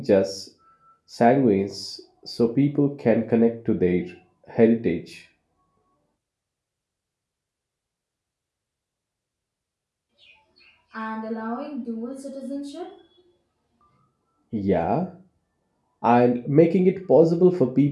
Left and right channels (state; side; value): identical; both; correlation 1.00